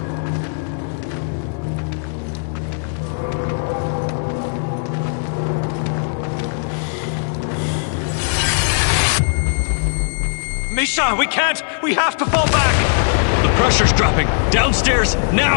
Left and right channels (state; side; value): silent; right; digital silence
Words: Misha, we can't! We have to fall back! The pressure's dropping! Downstairs!